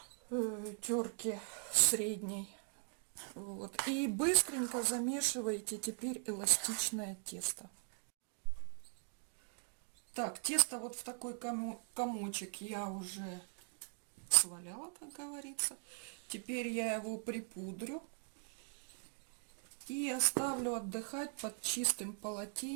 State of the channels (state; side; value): silent; left; 51 dB below the other